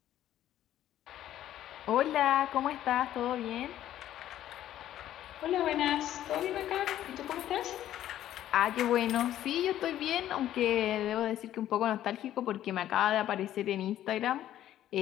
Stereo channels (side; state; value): right; quieter; 12.3 dB